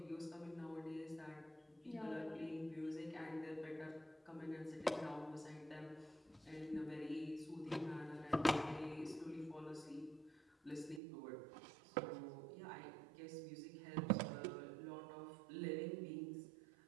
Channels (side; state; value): left; drops out; at 11.0 s